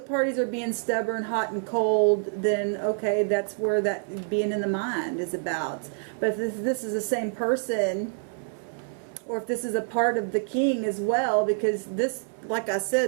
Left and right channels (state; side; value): silent; left; 59 dB below the other